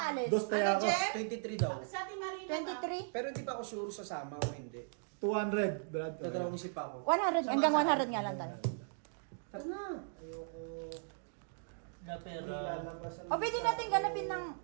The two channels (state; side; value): silent; left; digital silence